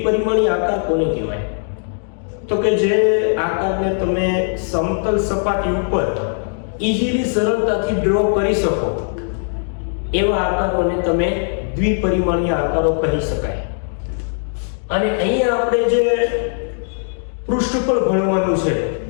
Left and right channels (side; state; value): right; silent; 66 dB below the other